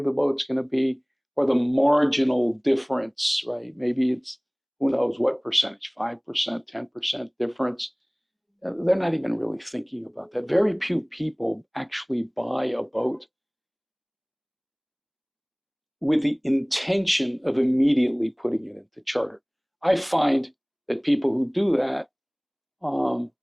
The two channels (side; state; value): both; identical; correlation 1.00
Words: the boat's going to be or the marginal difference, right? Maybe it's, who knows what percentage, 5%, 10% difference. they're not even really thinking about that. Very few people actually buy a boat with the intention of immediately putting it into charter. I find that people who do that